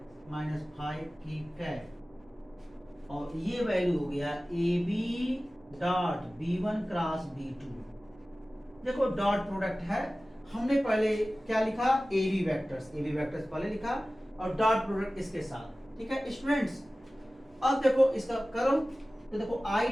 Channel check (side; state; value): both; normal; correlation 0.97